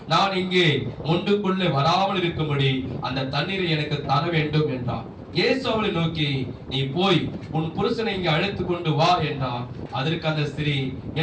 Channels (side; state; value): both; identical; correlation 1.00